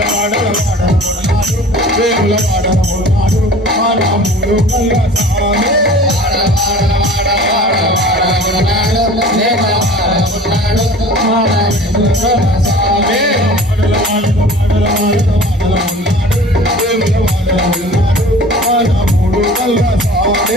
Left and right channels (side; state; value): both; normal; correlation 0.43